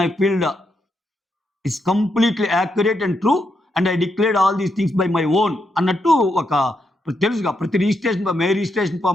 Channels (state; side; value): normal; both; correlation 0.81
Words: I field is completely accurate and true and I declared all these things by my own అన్నట్టు ఒక తెలుసుగా. ప్రతి రిజిస్ట్రేషన్ రిజిస్ట్రేషన్